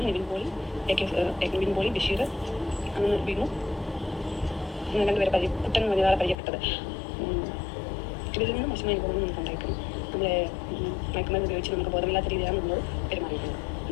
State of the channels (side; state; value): right; drops out; at 6.4 s